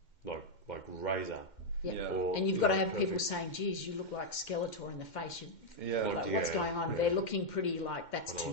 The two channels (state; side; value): late; right; 2.1 ms